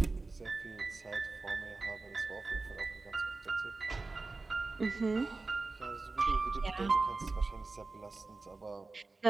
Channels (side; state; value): left; quieter; 3.6 dB